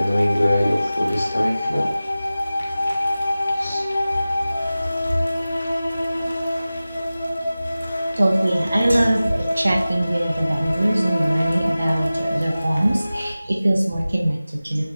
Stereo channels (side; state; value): both; inverted; correlation -0.97